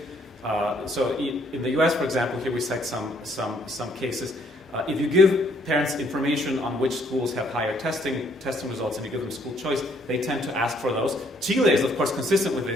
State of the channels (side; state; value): both; normal; correlation 0.67